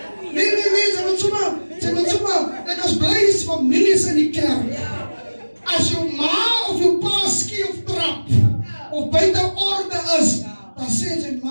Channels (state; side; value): inverted; both; correlation -1.00